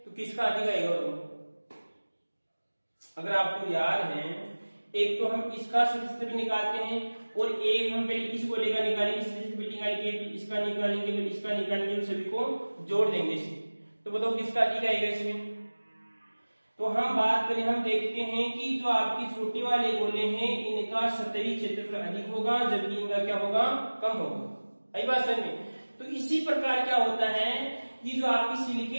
तो किसका अधिक आएगा? अगर आपको याद है, एक तो हम इसका सतही क्षेत्रफल निकालते हैं और एक हम पहले इस गोले का निकालेंगे, सतही क्षेत्रफल निकालेंगे, फिर इसका निकालेंगे, फिर इसका निकालेंगे, सभी को जोड़ देंगे इसे। तो बताओ किसका अधिक आएगा इसमें? तो हम बात करें, हम देखते हैं कि जो आपकी छोटे वाले गोले हैं इनका सतही क्षेत्रफल अधिक होगा, जबकि इनका क्या होगा? कम होगा। आई बात समझ में? तो इसी प्रकार क्या होता है कि जो आपकी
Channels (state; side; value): inverted; both; correlation -1.00